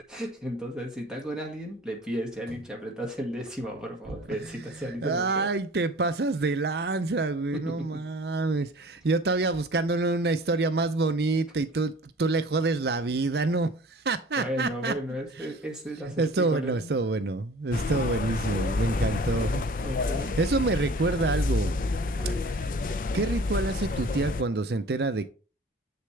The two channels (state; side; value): normal; both; correlation 0.46